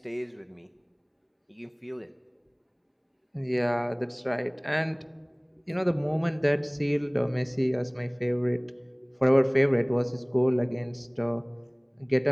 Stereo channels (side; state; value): both; identical; correlation 1.00